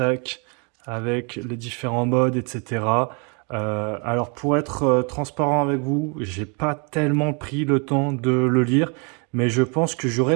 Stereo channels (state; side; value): quieter; left; 34.6 dB